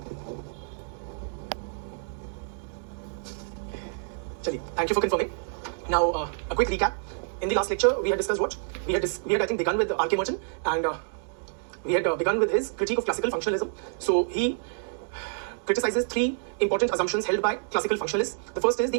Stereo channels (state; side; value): silent; left; digital silence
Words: Chaliye, thank you for confirming. Now, a quick recap. In the last lecture, we had discussed what? We had I think, begun with R.K. Merton, and we had begun with his critique of classical functionalism. So he criticizes three important assumptions held by classical functionalists. The first is the